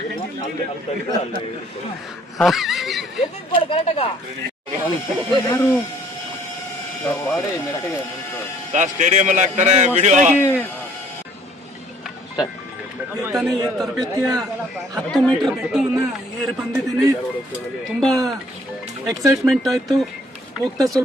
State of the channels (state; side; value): normal; both; correlation 0.59